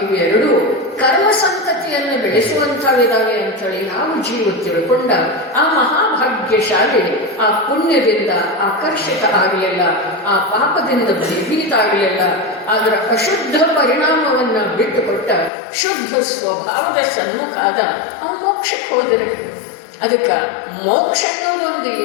ಇವೆರಡು ಕರ್ಮ ಸಂತತಿಯನ್ನು ಬೆಳೆಸುವಂಥವಿದಾವೆ ಅಂಥೇಳಿ ನಾವು ಜೀವ ತಿಳ್ಕೊಂಡ ಆ ಮಹಾಭಾಗ್ಯಶಾಲಿ ಆ ಪುಣ್ಯದಿಂದ ಆಕರ್ಷಿತ ಆಗಲಿಲ್ಲ, ಆ ಪಾಪದಿಂದ ಭಯಭೀತ ಆಗಲಿಲ್ಲ. ಅದರ ಅಶುದ್ಧ ಪರಿಣಾಮವನ್ನ ಬಿಟ್ಟುಕೊಟ್ಟ ಶುದ್ಧ ಸ್ವಭಾವದ ಸನ್ಮುಖಾದ ಆ ಮೋಕ್ಷಕ್ಕೆ ಹೋದರೆ. ಅದಕ್ಕೆ ಮೋಕ್ಷ ಅನ್ನೋದೊಂದು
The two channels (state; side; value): drops out; right; at 15.5 s